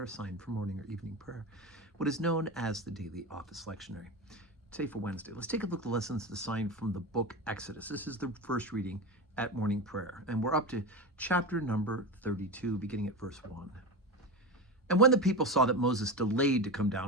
assigned for morning or evening prayer, what is known as the daily office lectionary. Today for Wednesday, let's take a look at the lessons assigned from the book Exodus. This is the first reading at morning prayer, and we're up to chapter number 32, beginning at verse 1. And when the people saw that Moses delayed to come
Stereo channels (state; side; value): normal; both; correlation 0.22